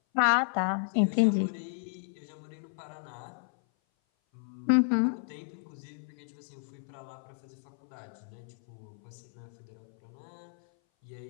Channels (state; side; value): silent; right; 56 dB below the other